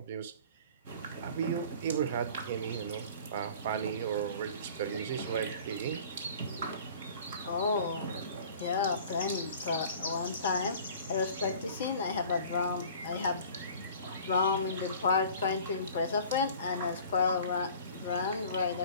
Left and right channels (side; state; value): both; inverted; correlation -0.46